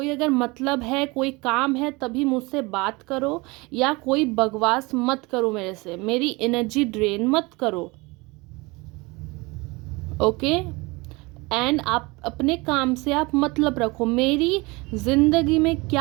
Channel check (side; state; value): left; quieter; 24.8 dB